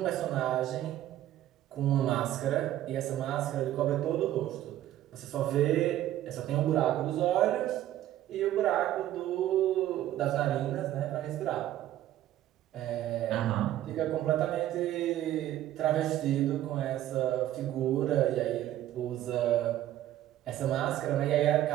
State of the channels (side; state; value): left; quieter; 13.1 dB